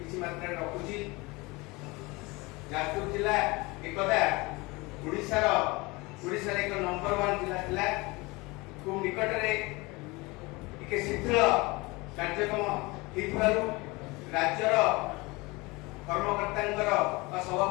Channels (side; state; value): right; quieter; 24.2 dB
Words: ମାତ୍ରାରେ ରଖୁଛି। ଯାଜପୁର ଜିଲ୍ଲା ଏକଦା ଓଡ଼ିଶାର ଏକ ନମ୍ବର 1 ଜିଲ୍ଲା ଥିଲା। ଖୁବ୍ ନିକଟରେ ଟିକେ ଶିଥିଳ କାର୍ଯ୍ୟକ୍ରମ ହେଇଥିବାରୁ ରାଜ୍ୟର କର୍ମକର୍ତ୍ତାଙ୍କର ବା